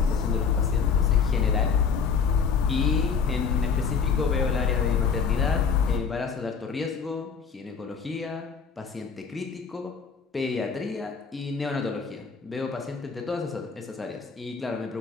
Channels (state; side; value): quieter; right; 5.9 dB